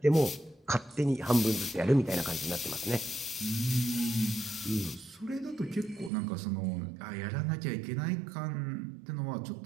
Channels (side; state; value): left; drops out; at 6.1 s